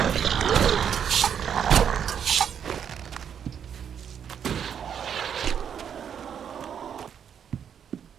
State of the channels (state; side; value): quieter; left; 8.2 dB